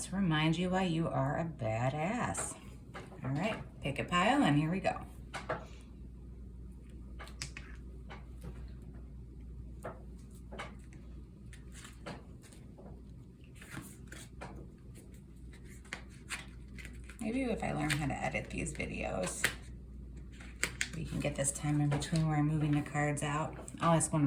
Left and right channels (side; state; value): both; identical; correlation 1.00